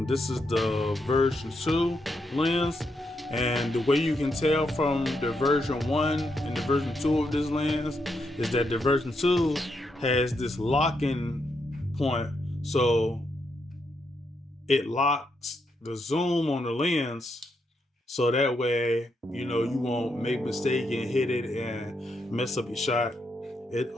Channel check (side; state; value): both; normal; correlation 0.80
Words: This is the version 2 lens, and the way you can tell from the version 1 and the version 2 of this lens is that the version 2 has this locking point, so it locks the zoom on the lens, so that way you won't make a mistake and hit it and mess up your shot. It